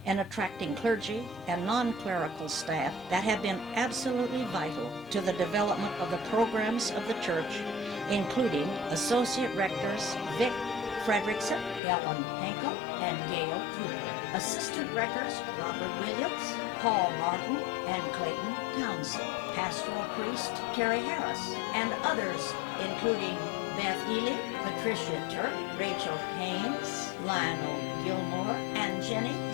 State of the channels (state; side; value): drops out; right; at 11.8 s